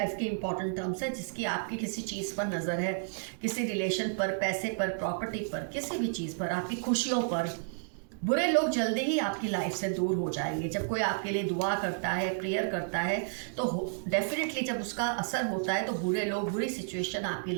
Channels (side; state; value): left; silent; digital silence